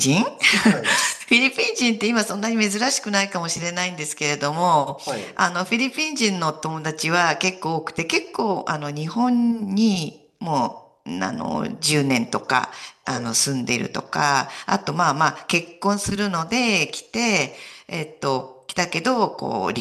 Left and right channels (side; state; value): both; identical; correlation 1.00